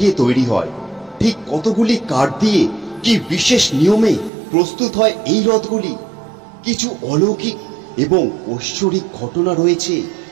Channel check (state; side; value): drops out; left; at 4.3 s